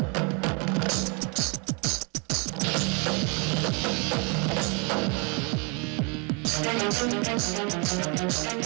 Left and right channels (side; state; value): left; quieter; 32.6 dB